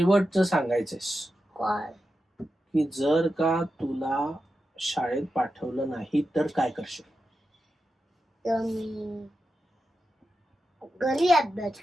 सांगायचंस काय? की जर का तुला शाळेत पाठवलं नाही तर काय करशील? तर मी घरी अभ्यास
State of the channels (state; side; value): normal; both; correlation 0.90